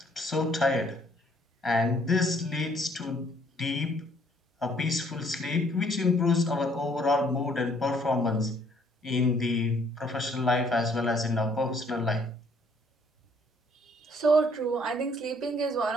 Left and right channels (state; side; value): normal; both; correlation 0.63